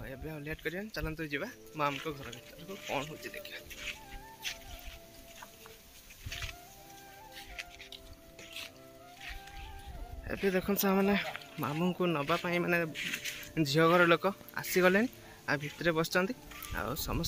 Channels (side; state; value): both; identical; correlation 1.00